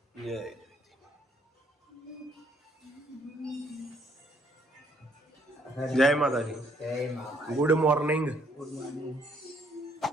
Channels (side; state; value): both; normal; correlation 0.67